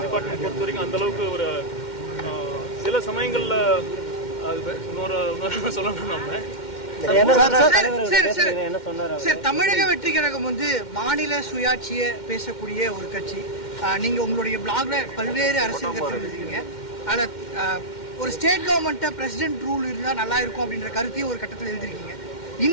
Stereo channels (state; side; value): late; right; 2.1 ms